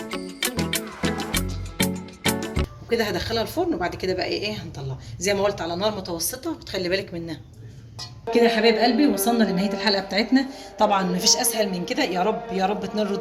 وكده هدخلها الفرن، وبعد كده بقى ايه هنطلعها زي ما قلت على نار متوسطه وتخلي بالك منها. كده يا حبايب قلبي وصلنا لنهايه الحلقه بتاعتنا. طبعا مفيش اسهل من كده، يا رب يا رب تنال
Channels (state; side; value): identical; both; correlation 1.00